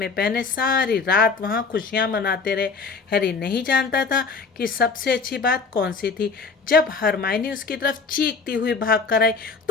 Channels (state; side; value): quieter; right; 4.7 dB